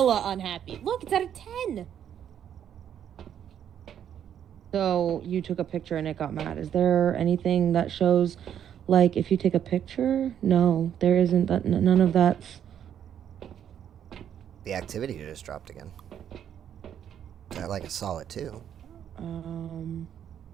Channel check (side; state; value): left; quieter; 9.4 dB